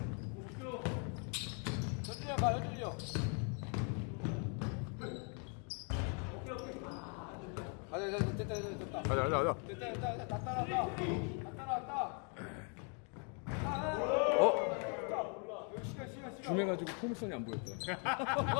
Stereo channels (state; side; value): quieter; right; 39.2 dB